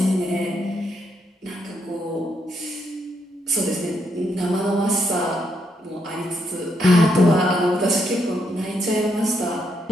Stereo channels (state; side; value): normal; both; correlation 0.77